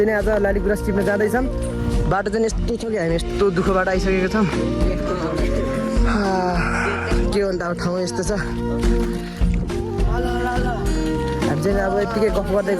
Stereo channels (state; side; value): identical; both; correlation 1.00